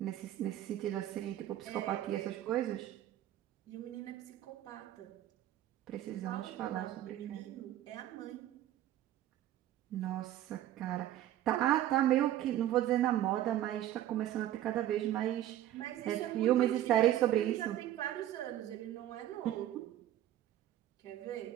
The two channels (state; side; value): quieter; left; 12.8 dB